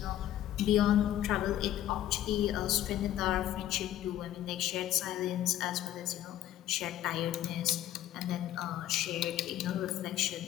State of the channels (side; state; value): right; quieter; 12.6 dB